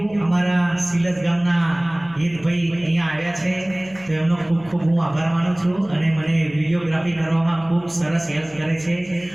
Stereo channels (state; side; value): noise; left; hum, 24 dB below the sound